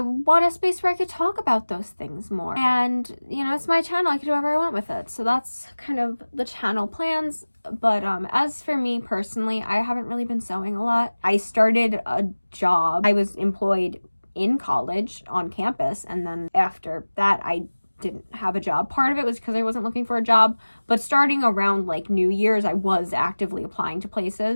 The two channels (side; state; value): both; inverted; correlation -1.00